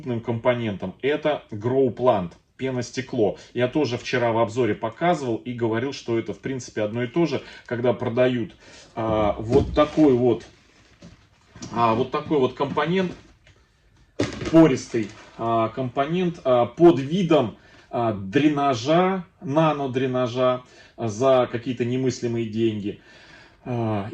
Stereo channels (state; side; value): identical; both; correlation 1.00